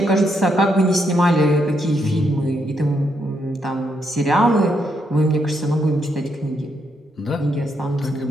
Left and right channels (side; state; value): both; normal; correlation 0.78